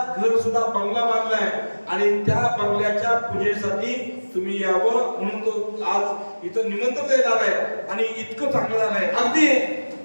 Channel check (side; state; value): both; inverted; correlation -1.00